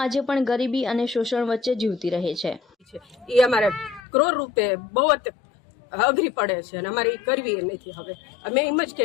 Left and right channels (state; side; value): drops out; right; at 4.0 s